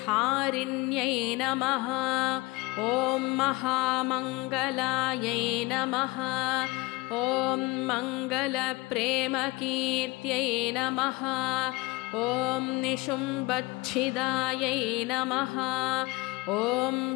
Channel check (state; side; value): quieter; right; 23.1 dB